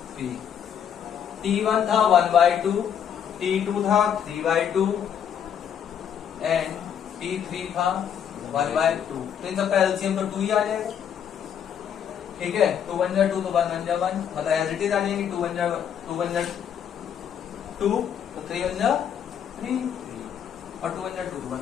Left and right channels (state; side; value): quieter; right; 8.6 dB